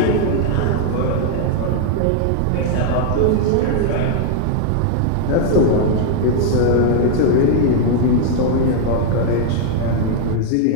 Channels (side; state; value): both; different; correlation 0.00